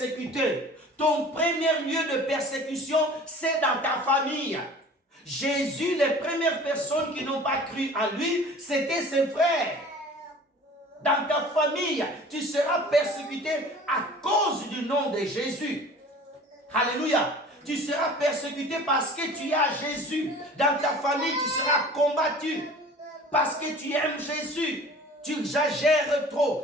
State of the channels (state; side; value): normal; both; correlation 0.44